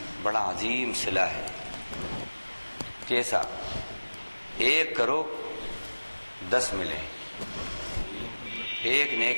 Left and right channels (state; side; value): inverted; both; correlation -1.00